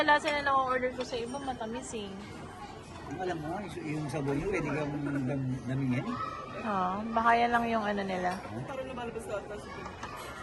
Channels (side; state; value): both; identical; correlation 1.00